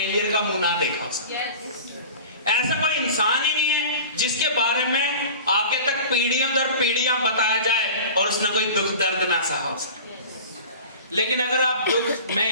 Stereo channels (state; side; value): inverted; both; correlation -0.38